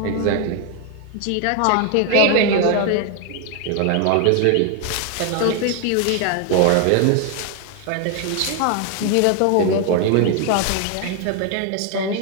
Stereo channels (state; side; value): different; both; correlation 0.00